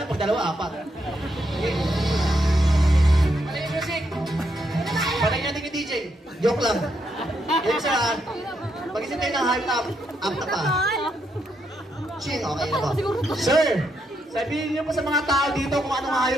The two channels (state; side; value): normal; both; correlation 0.79